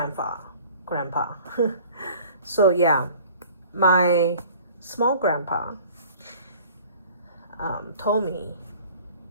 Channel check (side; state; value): both; inverted; correlation -0.49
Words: So yeah, my small grandpa told me